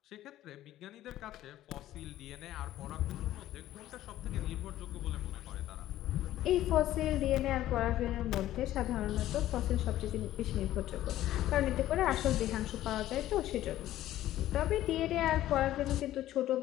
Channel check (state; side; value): quieter; right; 13.8 dB